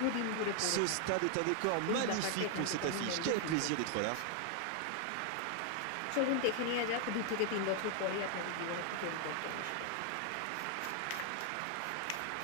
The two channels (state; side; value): different; both; correlation 0.00